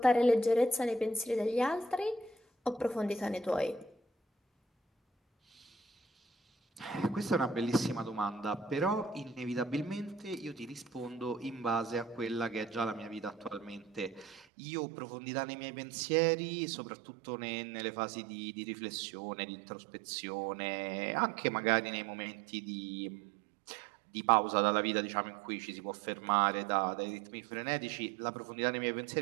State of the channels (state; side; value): drops out; left; at 14.5 s